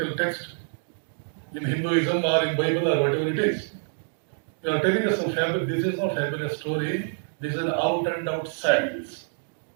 text in Hinduism or in Bible or whatever it is. You are telling us some fabulous, this is not fabulous story, this is an out and out science.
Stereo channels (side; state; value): left; silent; digital silence